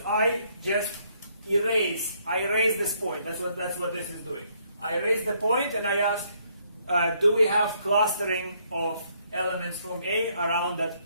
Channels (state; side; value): inverted; both; correlation -0.69